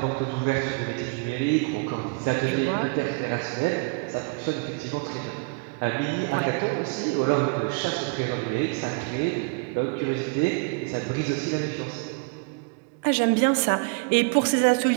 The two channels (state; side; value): quieter; left; 32.6 dB